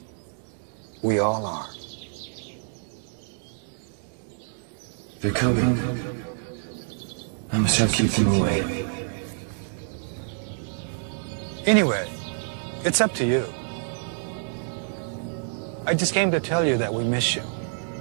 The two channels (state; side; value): silent; left; digital silence